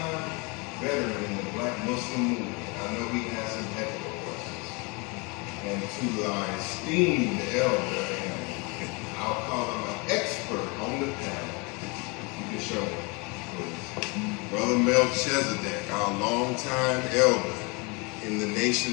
veteran in the Black Muslim movement. I know he has some ethical questions. And to our esteemed elder, and I'll call him an expert on the panel. You can show him, please. Brother Melchizedek, our longtime elder in the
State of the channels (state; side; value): quieter; right; 29.3 dB